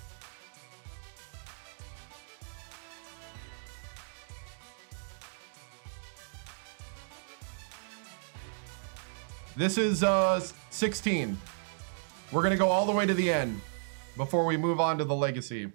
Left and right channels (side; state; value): left; silent; digital silence